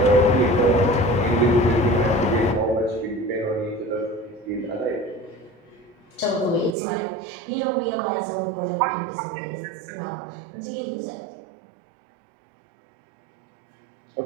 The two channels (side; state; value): left; drops out; at 6.8 s